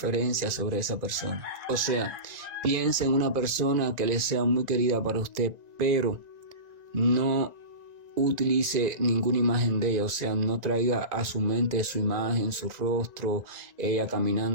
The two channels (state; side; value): late; left; 1.9 ms